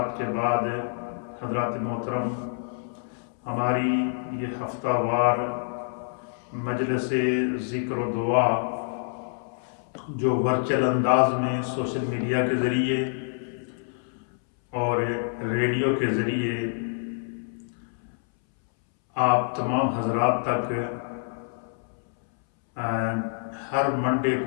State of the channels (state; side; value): silent; right; 60 dB below the other